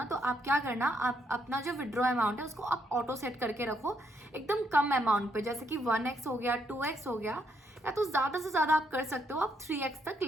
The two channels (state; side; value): normal; both; correlation 0.75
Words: तो आप क्या करना, आप अपना जो विड्रॉ अमाउंट है उसको आप ऑटो सेट करके रखो एकदम कम अमाउंट पे। जैसे कि 1x हो गया, 2x हो गया, या तो ज्यादा से ज्यादा आप कर सकते हो, आप 3x तक